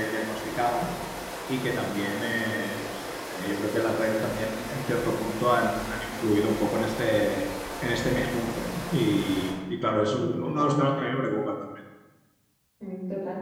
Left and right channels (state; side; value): identical; both; correlation 1.00